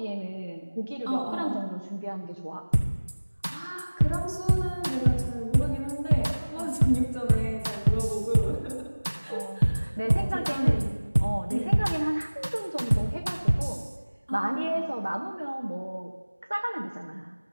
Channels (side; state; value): both; inverted; correlation -1.00